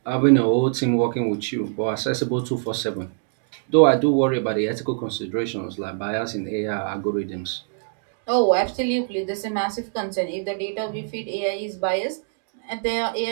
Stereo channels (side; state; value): left; silent; digital silence